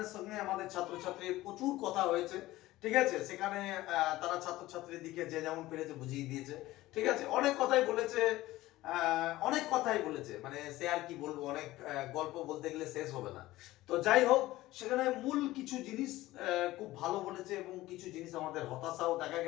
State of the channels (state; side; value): quieter; right; 17.1 dB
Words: সঙ্গে আমাদের ছাত্রছাত্রীর প্রচুর কথা হয়েছে। ঠিক আছে, সেখানে তারা ছাত্রছাত্রীর দিকে যে যেমন পেরেছে বুঝিয়ে দিয়েছে। ঠিক আছে, অনেক কথাই বলেছে, মানে সে আর কি বলবো, অনেক গল্প বলতে গেলে শেষ হবে না। তো যাই হোক, সেখানে মূল কিছু জিনিস খুব ভালো বলেছে এবং কিছু জিনিস আমাদের হতাশাও দেখা